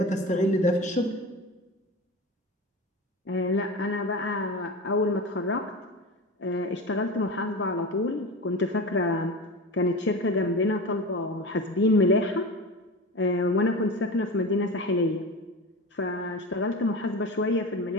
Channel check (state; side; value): normal; both; correlation 0.28